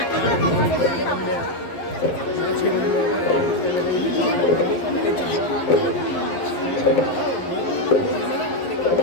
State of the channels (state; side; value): late; right; 11 ms